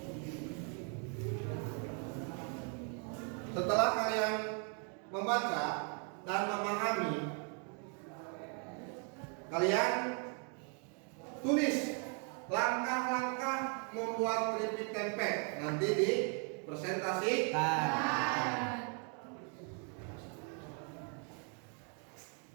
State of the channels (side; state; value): left; quieter; 39.8 dB